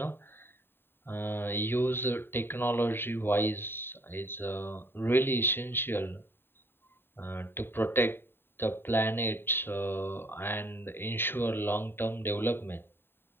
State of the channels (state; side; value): late; right; 0.11 ms